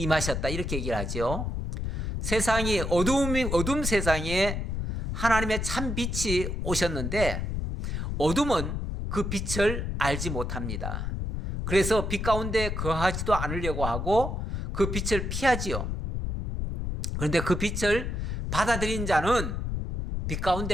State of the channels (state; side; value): noise; left; rumble, 3 dB below the sound